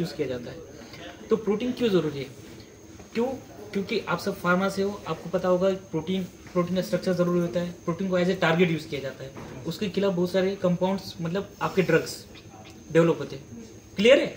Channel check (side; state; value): both; identical; correlation 1.00